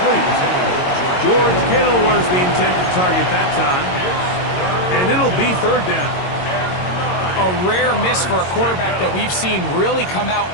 George Kittle was the intended target that time. And it'll be third down. A rare miss for a quarterback that we've seen really come out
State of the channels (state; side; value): late; right; 22 ms